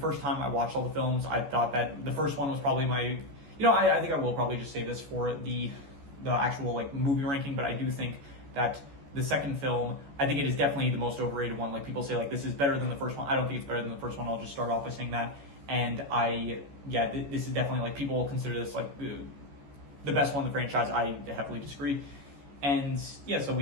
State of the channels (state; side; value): late; left; 14 ms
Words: time I watched all the films, I thought that the first one was probably my, I think I will probably just save this for the actual like movie ranking, but I do think that the second film, I think it is definitely the most overrated one. Like people say like this is better than the first one. I don't think it's better than the first one. I'll just start off by saying that. And this is definitely like people consider this like the best one in the franchise. I heavily disagree. And yeah, so